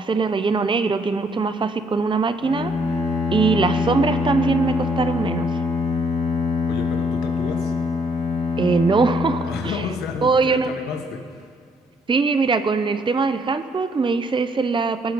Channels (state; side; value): normal; both; correlation 0.68